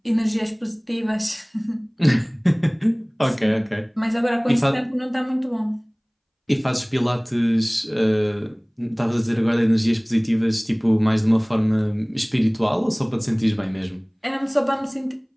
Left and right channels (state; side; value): identical; both; correlation 1.00